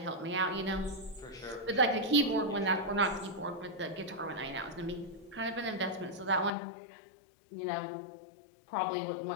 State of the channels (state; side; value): drops out; right; at 6.5 s